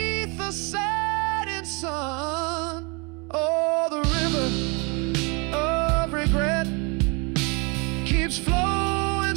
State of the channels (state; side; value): quieter; left; 30.7 dB